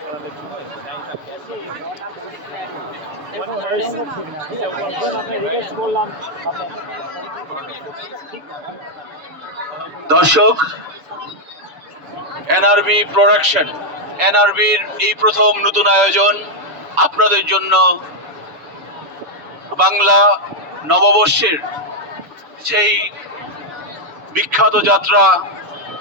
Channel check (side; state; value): left; late; 7.0 ms